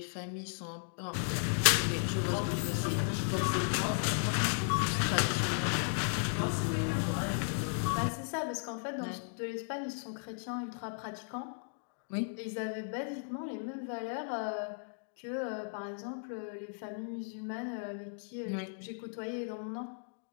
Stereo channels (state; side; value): silent; right; digital silence